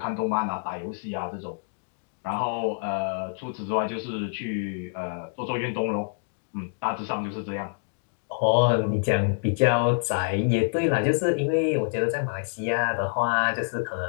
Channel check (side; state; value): right; silent; digital silence